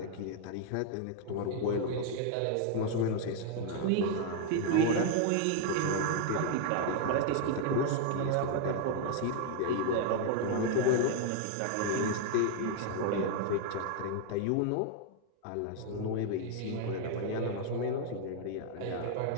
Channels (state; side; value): different; both; correlation 0.00